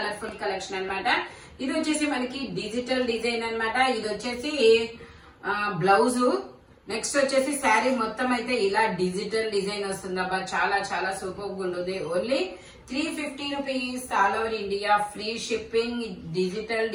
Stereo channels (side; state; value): both; identical; correlation 1.00